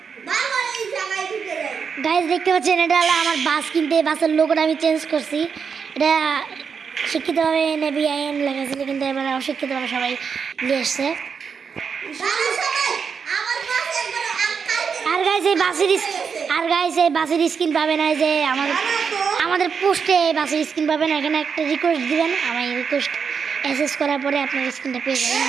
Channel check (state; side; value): quieter; left; 6.2 dB